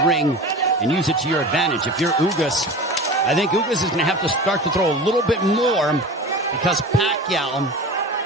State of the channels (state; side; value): normal; both; correlation 0.34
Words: ring and use it to your advantage. If you're Ugas, I think Ugas is going to have to start to throw a little bit more because Pacquiao,